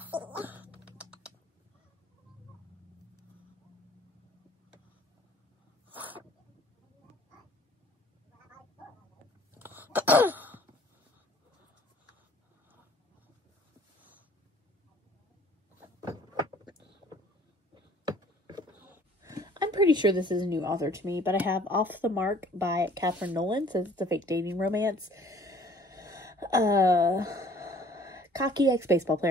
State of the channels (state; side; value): normal; both; correlation 0.55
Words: pretty sure this is a new author to me, but I have Off the Mark by Catherine Nolan. Says it's a fake dating romance. Cocky ex-baseball